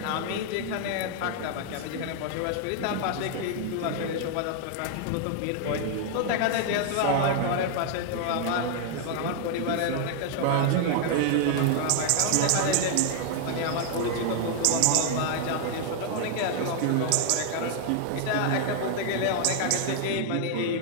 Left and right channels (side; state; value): both; different; correlation 0.00